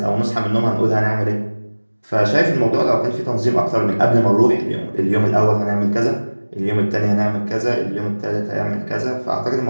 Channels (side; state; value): both; inverted; correlation -1.00